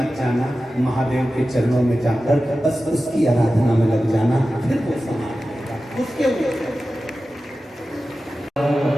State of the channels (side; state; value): both; normal; correlation 0.94